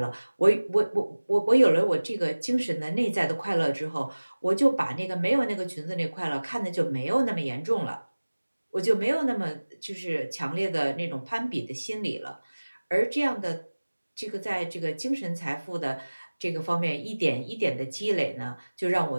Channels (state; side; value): inverted; both; correlation -1.00